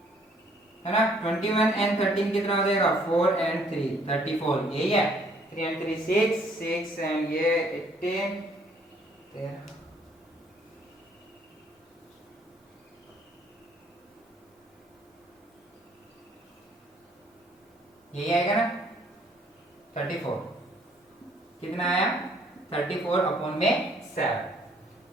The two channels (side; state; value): both; normal; correlation 0.63